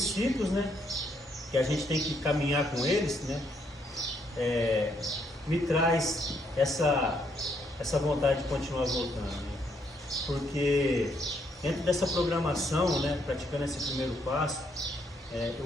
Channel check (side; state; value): both; normal; correlation 0.73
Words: né, que a gente tem que caminhar com eles, né, me traz essa vontade de continuar voltando, né? Porque dentro dessa programação, né, praticando esse primeiro passo,